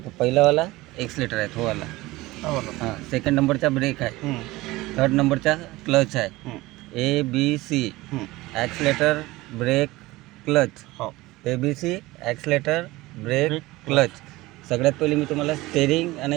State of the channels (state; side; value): quieter; left; 19.6 dB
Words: पहिलावाला एक्सलेटर आहे, तो वाला. हां, सेकंड नंबरचा ब्रेक आहे, थर्ड नंबरचा क्लच आहे. ABC accelerator, brake, clutch. ABC accelerator, brake, clutch. सगळ्यात पहिले मी तुम्हाला स्टेरिंग आणि